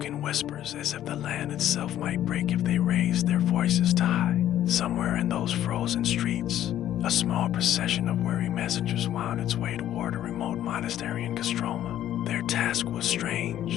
in whispers as if the land itself might break if they raised their voices too high. Somewhere in those frozen streets, a small procession of weary messengers wound its way toward a remote monastery in Kostroma. Their task was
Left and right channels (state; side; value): quieter; right; 12.0 dB